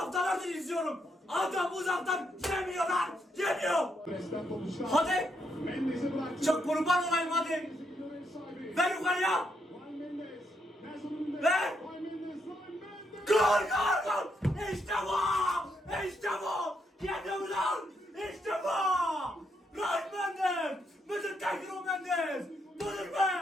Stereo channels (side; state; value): both; normal; correlation 0.78